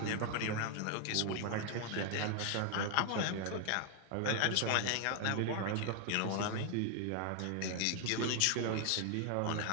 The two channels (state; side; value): different; both; correlation 0.00